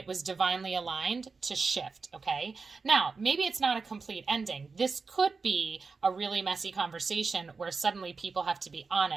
was divinely aligned to shift, okay? Now, maybe it's not a complete ending. This could be a really messy conversation where suddenly people have to be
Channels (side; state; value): left; quieter; 4.6 dB